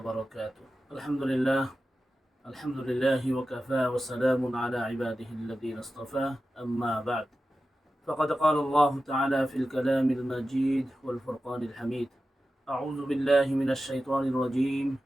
الحمد لله وكفى وسلام على عباده الذين اصطفى. أما بعد، فقد قال الله تعالى في الكلام المجيد والفرقان الحميد: أعوذ بالله من الشيطان الرجيم.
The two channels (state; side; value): normal; both; correlation 0.93